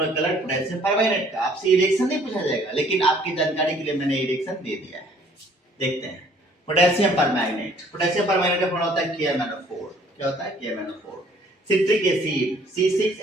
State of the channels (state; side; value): normal; both; correlation 0.59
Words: कलर पोटेशियम परमैंगनेट का। आपसे ये रिएक्शन नहीं पूछा जाएगा, लेकिन आपकी जानकारी के लिए मैंने ये रिएक्शन दे दिया है। देखते हैं पोटेशियम परमैंगनेट। पोटेशियम परमैंगनेट का फॉर्मूला होता है KMnO4। क्या होता है KMnO4। सिट्रिक एसिड